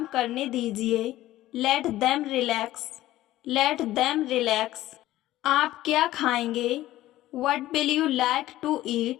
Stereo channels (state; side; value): quieter; right; 15.3 dB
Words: करने दीजिए, let them relax, let them relax. आप क्या खाएंगे? What will you like to